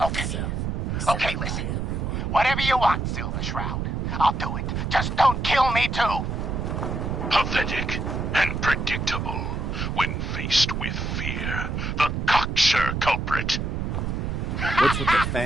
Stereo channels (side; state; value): right; noise; rumble, 2 dB below the sound